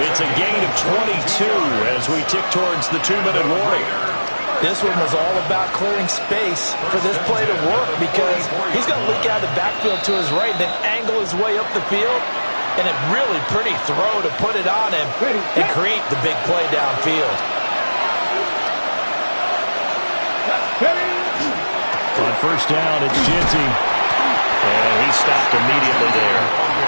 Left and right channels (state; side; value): inverted; both; correlation -1.00